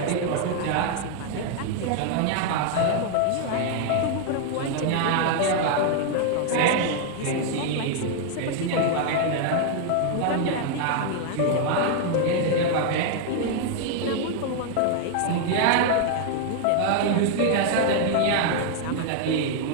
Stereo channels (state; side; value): different; both; correlation 0.00